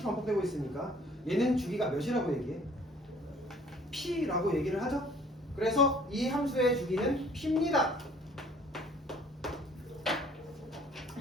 있으니까 얘는 주기가 몇이라고 얘기해? P라고 얘기를 하죠. 그래서 이 함수의 주기는 P입니다.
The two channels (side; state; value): both; normal; correlation 0.55